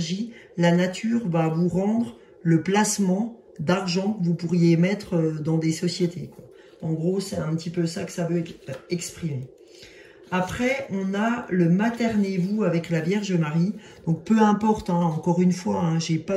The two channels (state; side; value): identical; both; correlation 1.00